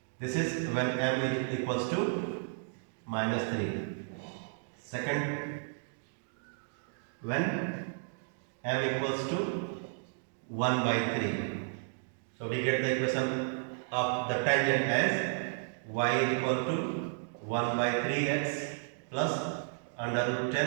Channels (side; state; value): left; silent; digital silence